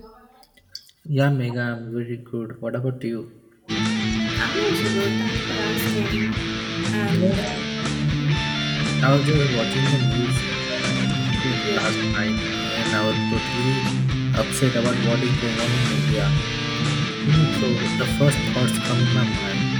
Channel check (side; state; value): both; identical; correlation 1.00